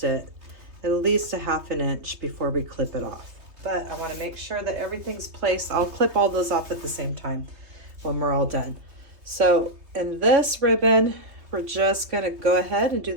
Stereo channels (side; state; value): left; late; 3.2 ms